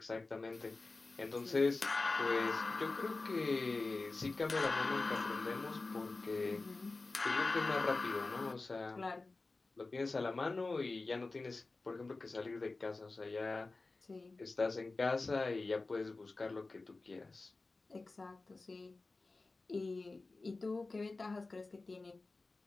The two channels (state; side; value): quieter; right; 3.5 dB